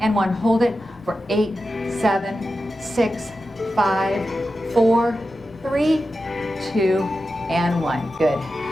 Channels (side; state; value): left; noise; rumble, 25 dB below the sound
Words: 1. Hold it for 8, 7, 6, 5, 4, 3, 2, and 1. Good.